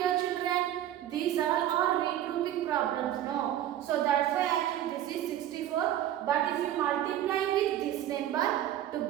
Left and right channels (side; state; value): left; quieter; 12.0 dB